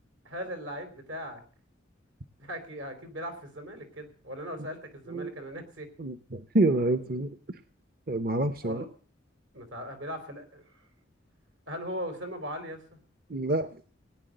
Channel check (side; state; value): both; normal; correlation 0.38